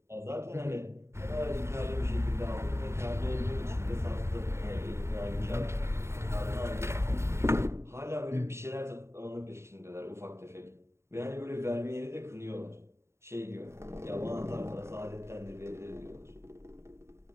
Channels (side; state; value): left; late; 0.13 ms